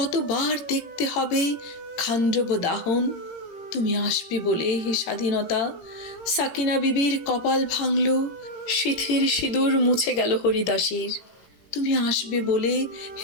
দেখতে হবে খান্ডব দাহন। তুমি আসবে বলে হে স্বাধীনতা, সাকিনা বিবির কপাল ভাঙল, সিথির সিঁদুর মুছে গেল হরিদাসীর। তুমি আসবে বলে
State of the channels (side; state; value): right; late; 18 ms